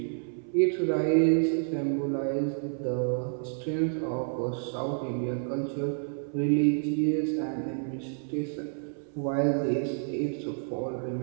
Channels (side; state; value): left; silent; 58 dB below the other